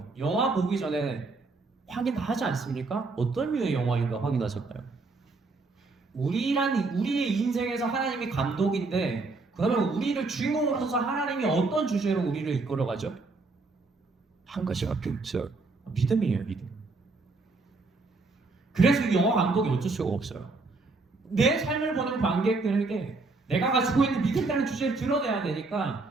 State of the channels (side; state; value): left; quieter; 3.7 dB